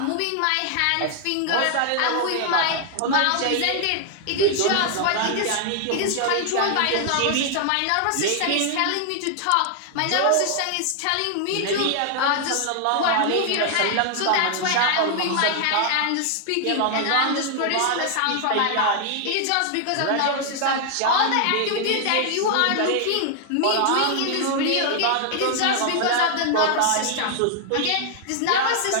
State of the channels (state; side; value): different; both; correlation 0.00